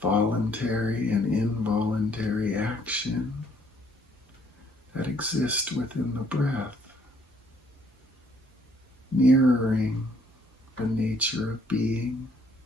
voluntary and involuntary action that exist within the breath, mirroring the nature of being,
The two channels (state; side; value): normal; both; correlation 0.65